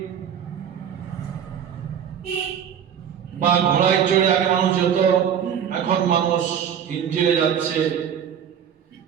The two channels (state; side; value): quieter; left; 8.5 dB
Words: বা ঘোড়ায় চড়ে, আগে মানুষ যেত, এখন মানুষ ইঞ্জিনে যাচ্ছে।